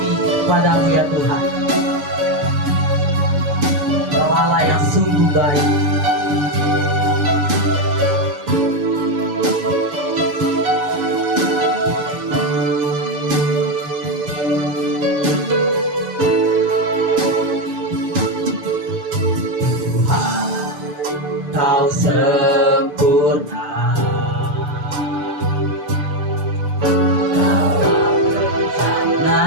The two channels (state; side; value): late; left; 6.7 ms